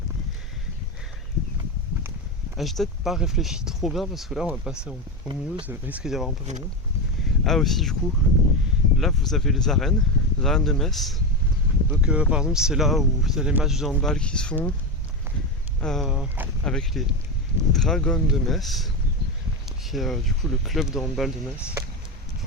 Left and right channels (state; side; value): normal; both; correlation 0.16